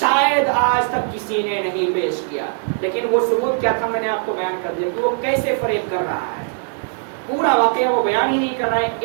آج تک کسی نے نہیں پیش کیا، لیکن وہ ثبوت کیا تھا میں نے آپ کو بیان کر دیا کہ وہ کیسے فریب کر رہا ہے، پورا واقعہ وہ بیان ہی نہیں کر رہا ہے،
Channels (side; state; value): left; silent; 66 dB below the other